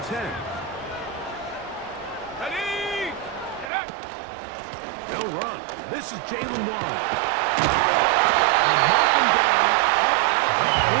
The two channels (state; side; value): drops out; left; at 3.7 s